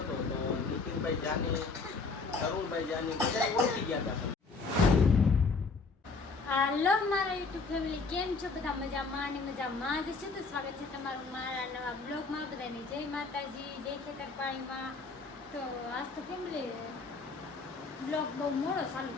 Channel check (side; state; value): right; quieter; 4.2 dB